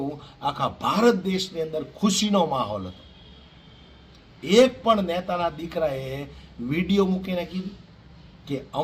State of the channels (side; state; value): both; identical; correlation 1.00